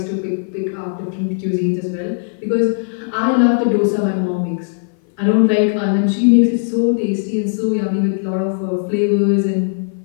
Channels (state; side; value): silent; right; 58 dB below the other